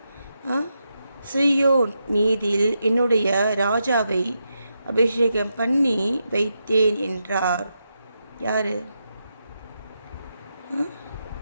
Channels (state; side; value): inverted; both; correlation -0.85